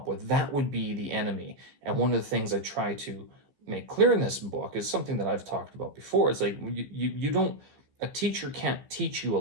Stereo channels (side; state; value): left; late; 15 ms